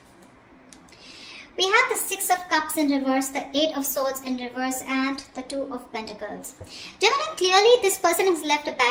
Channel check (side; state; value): both; identical; correlation 1.00